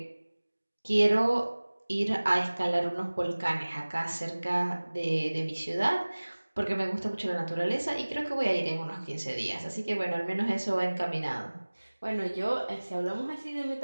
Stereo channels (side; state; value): both; inverted; correlation -1.00